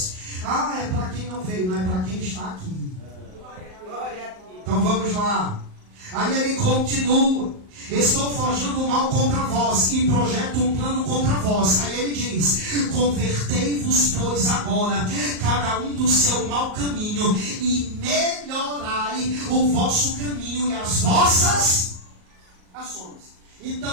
Ah, é para quem não veio, não é para quem está aqui. Glória a Deus. Então vamos lá. Aí ele continua. Estou forjando o mal contra vós e projeto um plano contra vós. Aí ele diz, convertei-vos, pois, agora, cada um do seu mau caminho, e melhorai o vosso caminho e as vossas ações.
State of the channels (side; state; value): left; late; 38 ms